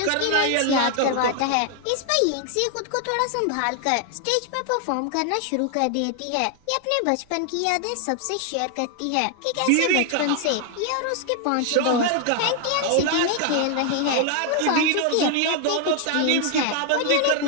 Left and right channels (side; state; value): both; different; correlation 0.00